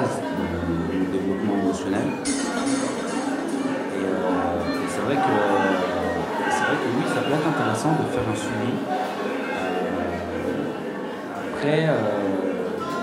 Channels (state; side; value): identical; both; correlation 1.00